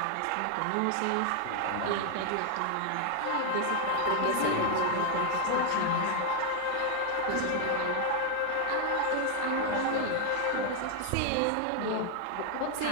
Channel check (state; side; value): different; both; correlation 0.00